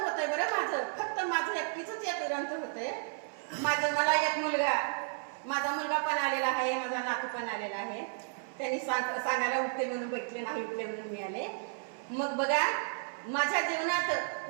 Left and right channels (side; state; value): left; silent; 56 dB below the other